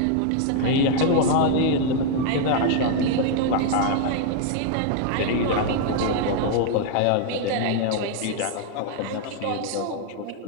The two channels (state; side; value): different; both; correlation 0.00